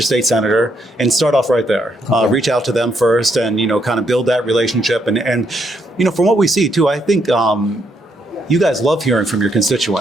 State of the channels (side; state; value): both; normal; correlation 0.75